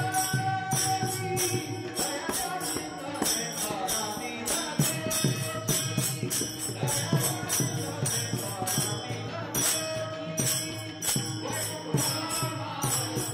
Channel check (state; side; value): identical; both; correlation 1.00